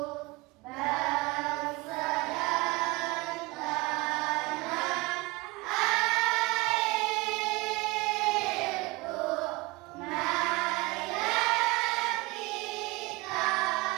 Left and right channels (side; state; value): left; quieter; 23.9 dB